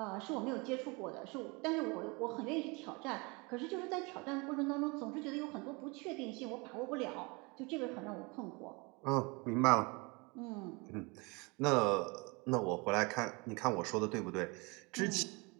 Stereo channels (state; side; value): quieter; left; 28.2 dB